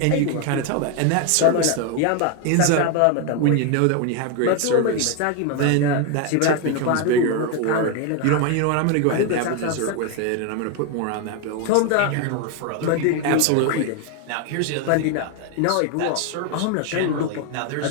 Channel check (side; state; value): both; different; correlation 0.01